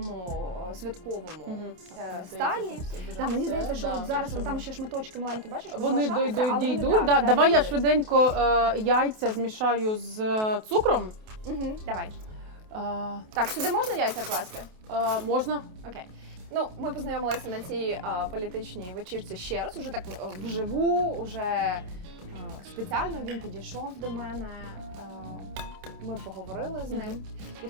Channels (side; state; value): left; late; 28 ms